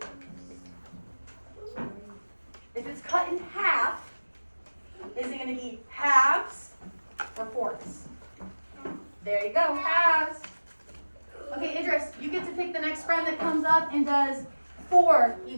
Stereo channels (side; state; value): both; inverted; correlation -1.00